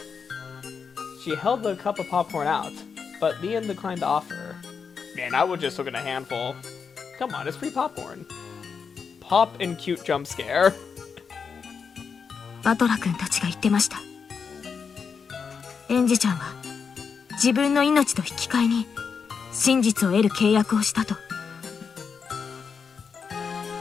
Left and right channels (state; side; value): quieter; right; 5.9 dB